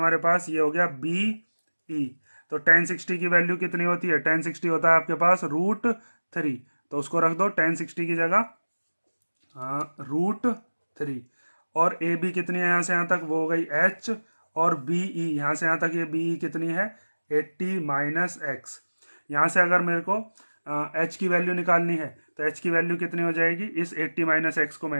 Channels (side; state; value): both; inverted; correlation -1.00